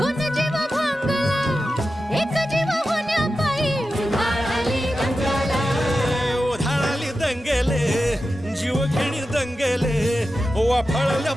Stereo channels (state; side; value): normal; both; correlation 0.92